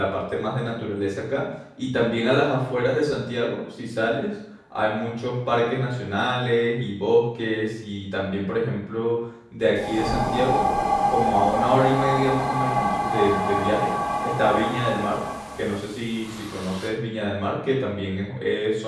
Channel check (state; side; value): identical; both; correlation 1.00